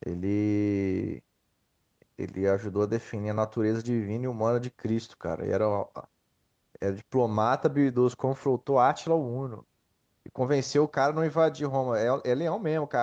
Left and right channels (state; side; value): identical; both; correlation 1.00